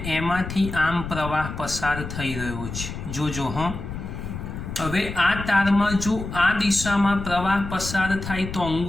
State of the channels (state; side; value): noise; left; rumble, 8 dB below the sound